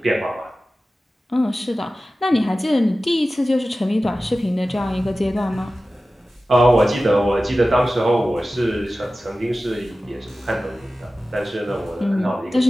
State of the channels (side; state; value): both; normal; correlation 0.95